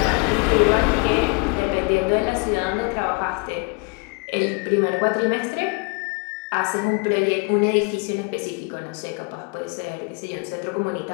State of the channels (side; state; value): right; quieter; 32.3 dB